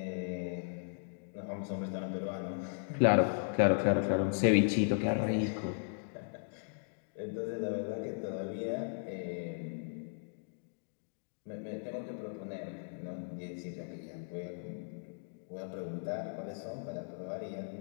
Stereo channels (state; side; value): silent; right; digital silence